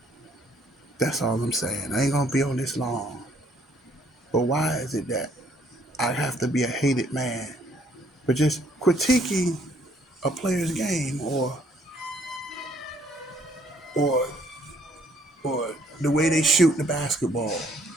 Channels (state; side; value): normal; both; correlation 0.65